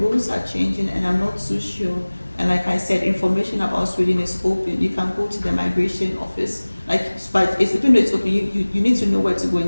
are changing and I'm not so sure. And like I said, information about Sweden is open. You can go to the migration office. But even though it's open, you need to know where to go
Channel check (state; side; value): inverted; both; correlation -1.00